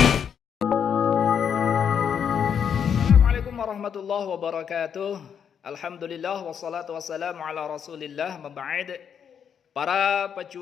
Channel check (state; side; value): quieter; right; 7.8 dB